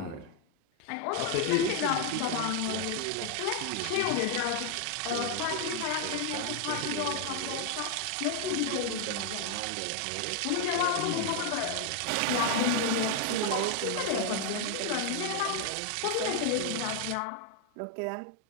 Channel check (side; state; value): both; different; correlation 0.00